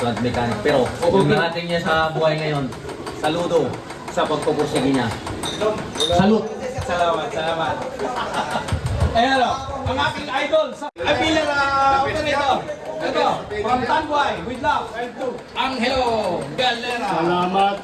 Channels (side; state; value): both; identical; correlation 1.00